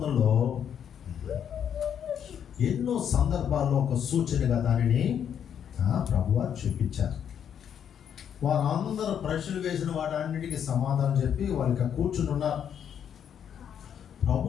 ఎన్నో సందర్భాల్లో ఒక సూచనగా దానిని ప్రభువారు చూపించారు. వారందరూ ప్రశ్నలు వేసిన వాటన్నిటికీ సమాధానం చెప్పి వాళ్ళకి కూర్చుని ఉన్నారు.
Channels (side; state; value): right; quieter; 8.6 dB